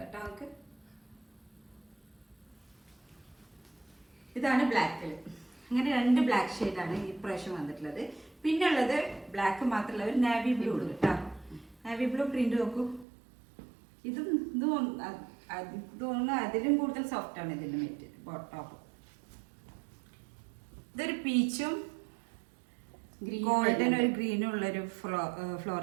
കേട്ടോ നമുക്ക്. ഇതാണ് ബ്ലാക്കിൽ. അങ്ങനെ രണ്ട് ബ്ലാക്ക് ഷെയ്ഡാണ് ഈ പ്രാവശ്യം വന്നിട്ടുള്ളത്. പിന്നെ ഉള്ളത് ബ്ലാക്ക് മാത്രമല്ല ഒരു നാവി ബ്ലൂ ഉണ്ട് കേട്ടോ. നാവി ബ്ലൂ പ്രിന്റ് നോക്കൂ. ഇതും തോന്നുന്നു അതിലും കൂടുതൽ സോഫ്റ്റ് ആണ് ഇതിന്റെ മെറ്റീരിയൽ ടോപ്പ്. ഇതൊരു പീച്ചും ഗോൾഡൻ ഒരു ഗ്രീനും ഉള്ളൊരു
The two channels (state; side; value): drops out; left; at 13.1 s